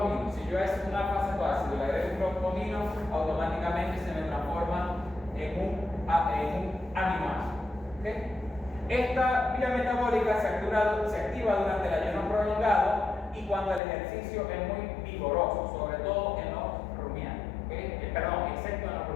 Si yo es un alfa-cetoácido y le agrego un grupo amino, automáticamente se me transforma en un aminoácido. ¿Okay? Esta vía metabólica se activa durante el ayuno prolongado y cuando el ejercicio es muy vigoroso, sobre todo en los rumiantes. ¿Okay? Perdón, excepto en los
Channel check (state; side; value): drops out; right; at 13.8 s